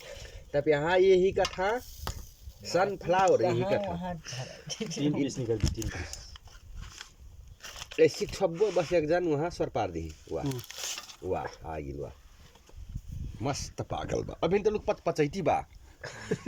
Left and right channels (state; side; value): identical; both; correlation 1.00